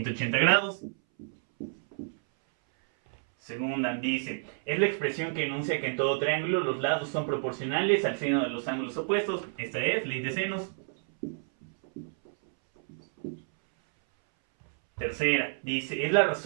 grados. Segunda dice: es la expresión que enuncia que en todo triángulo los lados son proporcionales al seno de los ángulos opuestos. Esta es ley de senos. Tercera, dice: es la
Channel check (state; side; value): silent; left; 58 dB below the other